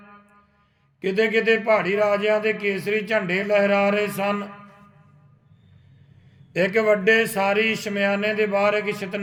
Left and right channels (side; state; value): both; identical; correlation 1.00